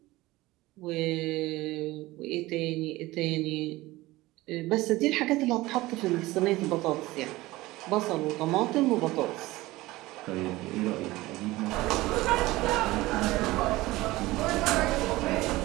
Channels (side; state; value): left; quieter; 19.0 dB